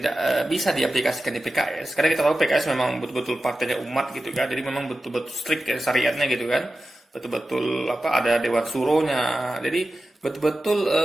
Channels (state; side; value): normal; both; correlation 0.93